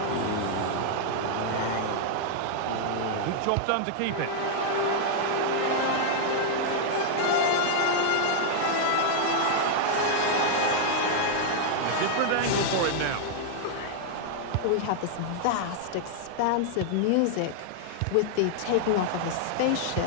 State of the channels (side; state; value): both; different; correlation -0.01